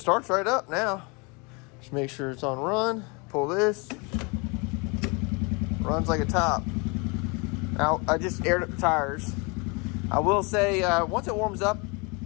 right up now. Just make sure it's on run. Pull this. Runs like a top. Now, I just aired up the tires. I will say, once it warms up,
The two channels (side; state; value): right; quieter; 30.2 dB